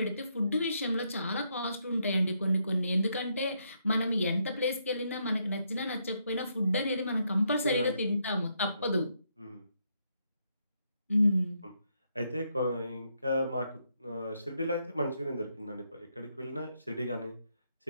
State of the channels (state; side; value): inverted; both; correlation -0.77